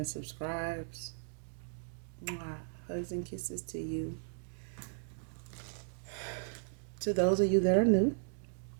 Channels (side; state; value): left; silent; digital silence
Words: subscribes. Mwah. Hugs and kisses to you. To those of you that are new,